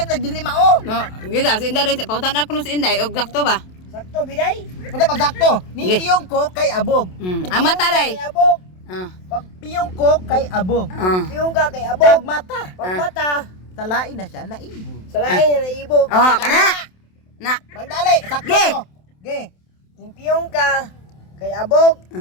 nagdili mao. No, gida si Inday pautan ako no si Inday og sakto ba? Sakto biday. Unta pagsakto? Ni Ge. piyong ko kay abog. Ang mata day. Kay abog. Ah. Pag piyong ko kay abog. Ah. Piyong ka kay Pag abog. mata, Pagmata talain na siya na ibog. sa lain na ibog. Oh, kana. Na. Pagdali, sakto Ge. to. Ge. Impiyong ka. Kay abog.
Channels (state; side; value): late; right; 27 ms